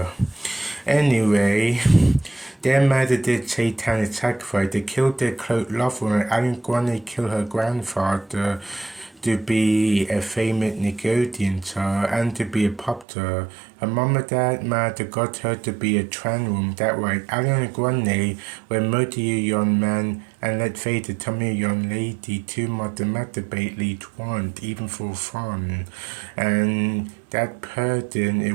Anyway, their mother did satanic sacrifice. They killed their close lover, and Ariana Grande killed her grandfather to be a famous Nickelodeon star and to be a pop star. Her mom and dad might got her to be a trans woman. That right. Ariana Grande were multi young man, and let's face it, some young lady too much masturbate want, even for fun. And that person,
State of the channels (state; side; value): drops out; left; at 13.1 s